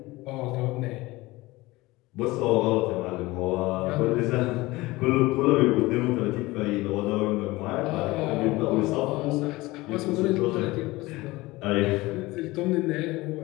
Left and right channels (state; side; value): quieter; right; 20.5 dB